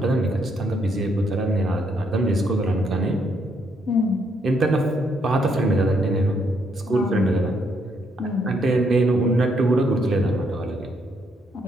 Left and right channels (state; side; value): normal; both; correlation 0.73